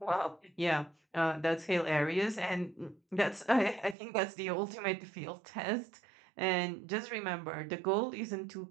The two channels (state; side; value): drops out; left; at 4.0 s